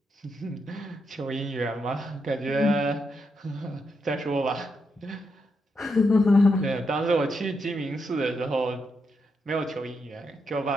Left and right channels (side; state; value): both; normal; correlation 0.82